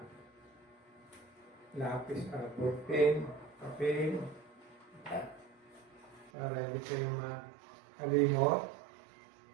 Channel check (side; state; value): left; drops out; at 6.3 s